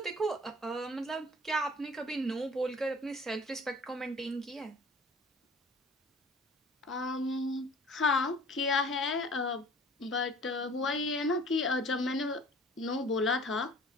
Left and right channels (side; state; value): both; normal; correlation 0.48